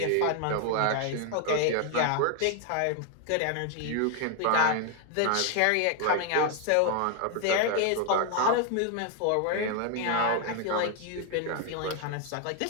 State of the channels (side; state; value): both; different; correlation 0.01